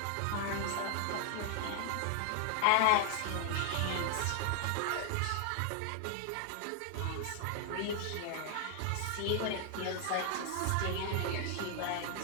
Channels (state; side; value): different; both; correlation 0.00